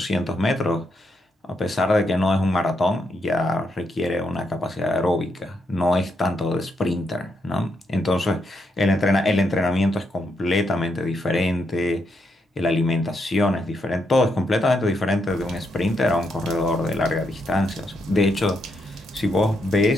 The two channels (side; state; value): both; normal; correlation 0.80